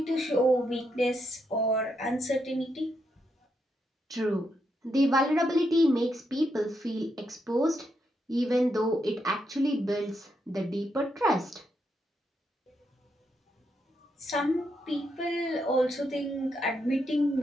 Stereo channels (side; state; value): both; normal; correlation 0.80